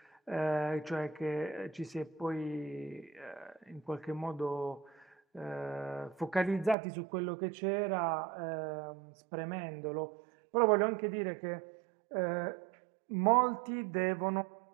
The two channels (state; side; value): drops out; left; at 6.8 s